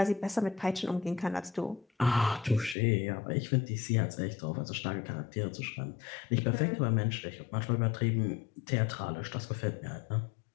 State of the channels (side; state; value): right; drops out; at 2.8 s